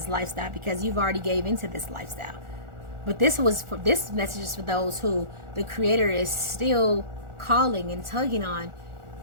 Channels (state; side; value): late; left; 1.4 ms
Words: lifestyle, because you've already gave into this lifestyle. But this message is for those who the Creator is still calling and tugging on,